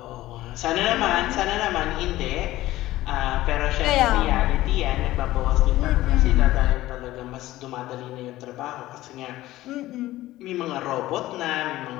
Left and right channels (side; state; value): right; quieter; 16.2 dB